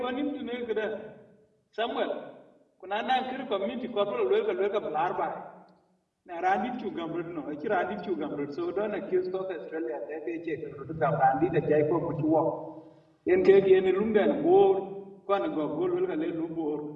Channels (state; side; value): identical; both; correlation 1.00